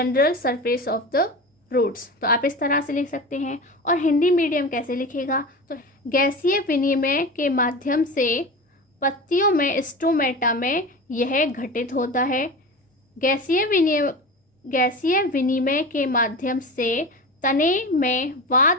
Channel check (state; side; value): normal; both; correlation 0.29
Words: surface of the roots। तो आप इस तरह से लिख सकते हैं। और हिंदी मीडियम कैसे लिखेगा, तो गैसीय विनिमय के माध्यम से पत्तियों में स्टोमेटा में यह घटित होता है। गैसीय विनिमय के माध्यम से तने में